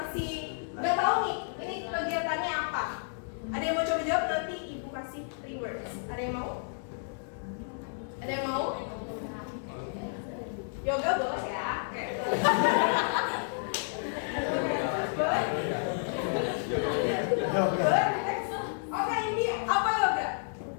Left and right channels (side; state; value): right; silent; digital silence